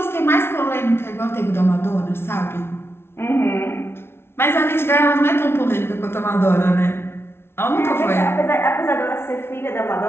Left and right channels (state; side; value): late; right; 0.12 ms